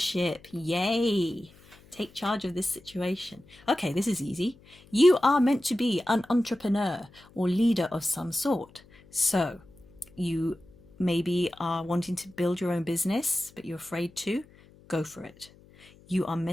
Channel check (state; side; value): noise; left; hum, 26 dB below the sound